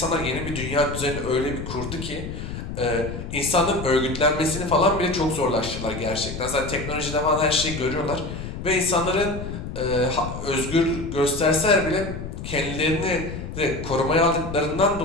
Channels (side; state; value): left; noise; rumble, 8 dB below the sound